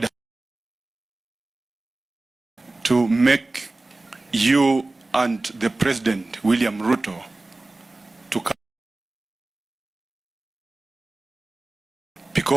to make you and the President, William Ruto, to come.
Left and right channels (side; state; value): left; quieter; 3.0 dB